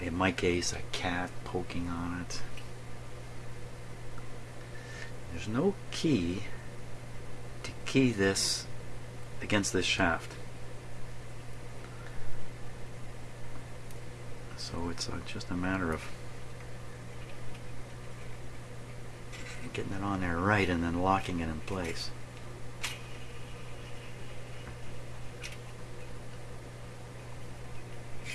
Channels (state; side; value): identical; both; correlation 1.00